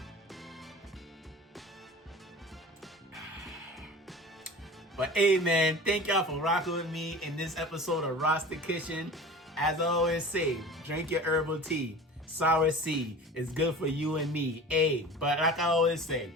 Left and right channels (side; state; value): both; normal; correlation 0.38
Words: But hey, man, thank y'all for rocking with me in this episode of Rasta Kitchen. As I always say, drink your herbal tea. Cerasee is good for you and me. Hey, but like I always say,